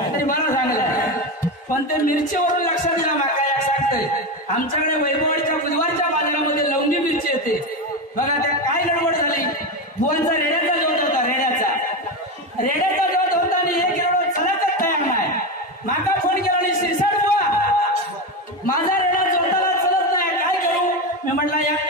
तरी बरा सांगला. पण ते मिरचीवरून लक्षात दिला माका या सांगतोय आमच्याकडे वैभववाडीच्या बुधवारच्या बाजारामध्ये लवंगी मिरची येते बघा. त्या काय गडबड झाली बुवांचा रेड्याचा जोत होता. रेड्याचा जोत होता आणि एक रेडो चलतच तयार नाही. माका फोन केला आणि शिरसाट बुवा माझा रेडा जोताला चलत नाही काय करू. मी म्हटलं एक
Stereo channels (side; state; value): both; normal; correlation 0.16